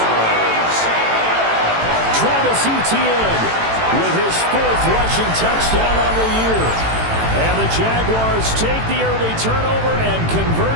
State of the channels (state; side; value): late; left; 18 ms